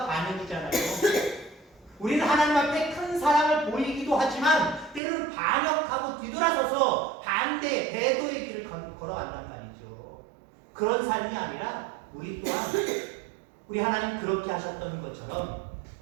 반역이잖아요. 우리는 하나님 앞에 큰 사랑을 보이기도 하지만 때로는 반역하고 뒤돌아서서 반대, 배도의 길을 걸어간단 말이죠. 그런 삶이 아니라 우리 또한 우리 하나님 그렇게 하셨던 것처럼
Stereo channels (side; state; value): left; drops out; at 5.0 s